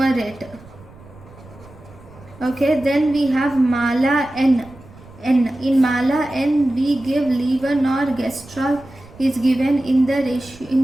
Okay, then we have Mala-N. In Mala-N, we give levonorgestrel is given in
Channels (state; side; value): noise; right; rumble, 22 dB below the sound